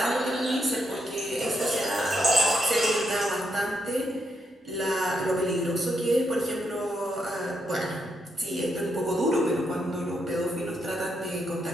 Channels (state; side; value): normal; both; correlation 0.79